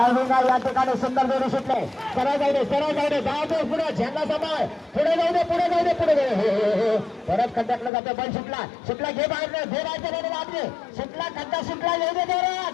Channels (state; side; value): drops out; right; at 7.9 s